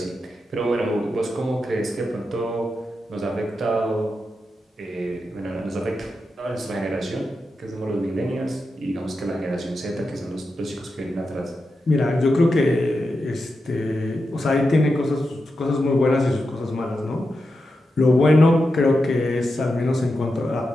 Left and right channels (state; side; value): normal; both; correlation 0.88